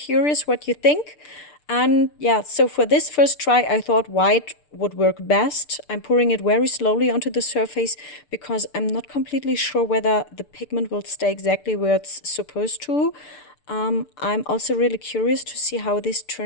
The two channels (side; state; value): right; late; 6.8 ms